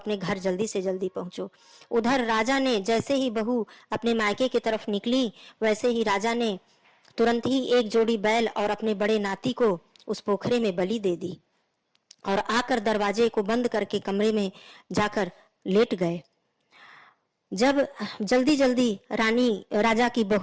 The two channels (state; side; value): identical; both; correlation 1.00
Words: घर जल्दी से जल्दी पहुंचो। उधर राजा ने जैसे ही बहू अपने मायके की तरफ निकली, वैसे ही राजा ने तुरंत ही एक जोड़ी बैल और अपने बड़े नाती को उस पोखरे में बलि दे दी और आकर दरवाजे को बंद करके कमरे में जाकर लेट गए। जब जल्दी जल्दी राजा की